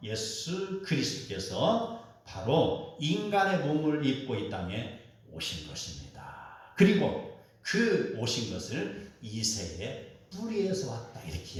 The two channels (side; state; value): both; identical; correlation 1.00